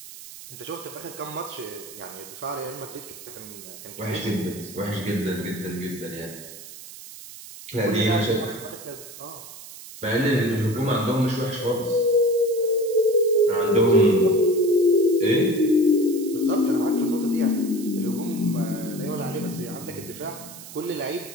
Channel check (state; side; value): noise; right; hiss, 15 dB below the sound